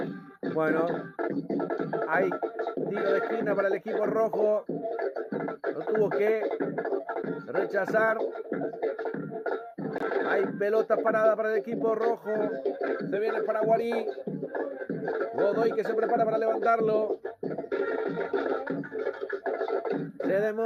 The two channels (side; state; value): both; identical; correlation 1.00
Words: Bueno, hay tiro de esquina para el equipo rojo. Lo tuvo que rechazar. Hay pelota parada para el equipo rojo. Se viene Paraguarí. Godoy que se prepara para levantarlo. Se